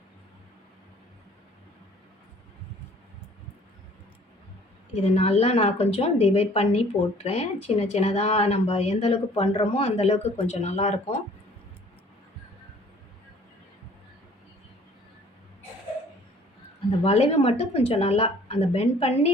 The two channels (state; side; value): normal; both; correlation 0.54